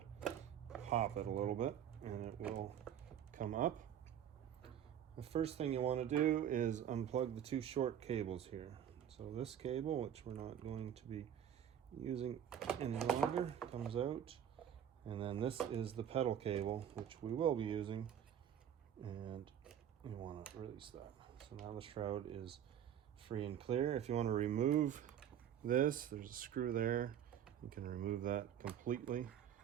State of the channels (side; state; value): left; quieter; 9.7 dB